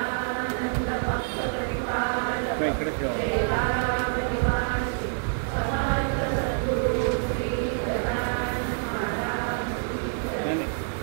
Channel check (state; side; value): silent; left; 60 dB below the other